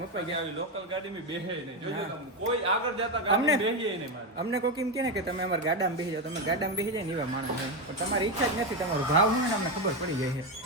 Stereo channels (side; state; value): both; normal; correlation 0.11